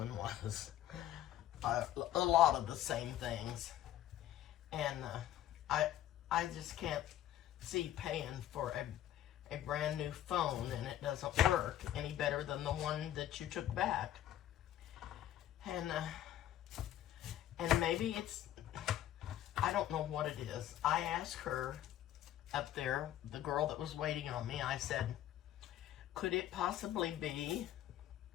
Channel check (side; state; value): right; quieter; 12.4 dB